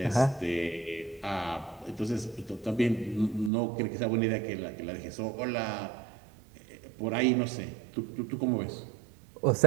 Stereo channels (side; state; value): left; drops out; at 3.5 s